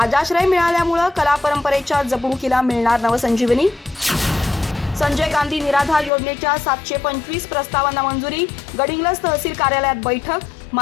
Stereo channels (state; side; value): drops out; right; at 6.1 s